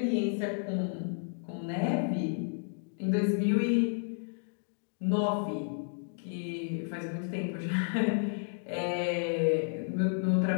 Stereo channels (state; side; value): silent; right; digital silence